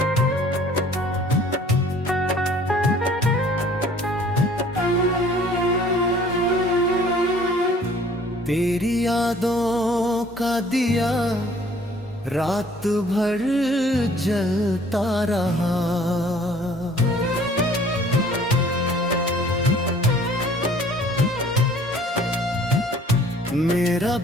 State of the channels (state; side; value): normal; both; correlation 0.54